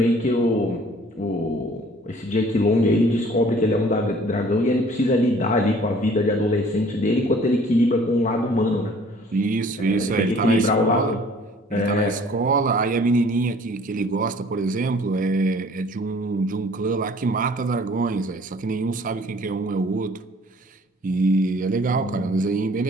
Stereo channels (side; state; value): both; normal; correlation 0.54